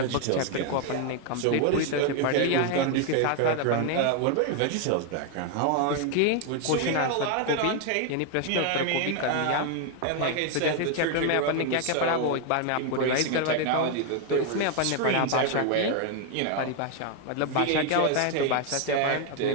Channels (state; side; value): different; both; correlation 0.00